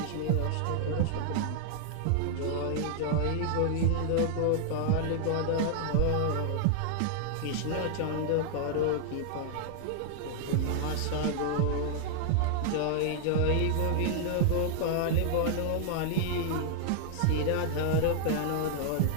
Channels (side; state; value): both; different; correlation 0.00